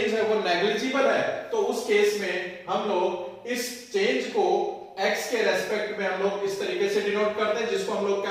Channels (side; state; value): both; identical; correlation 1.00